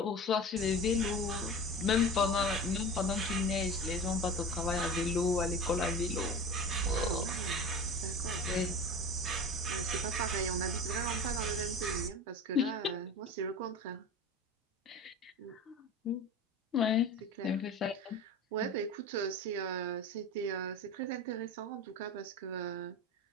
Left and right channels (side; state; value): both; normal; correlation 0.33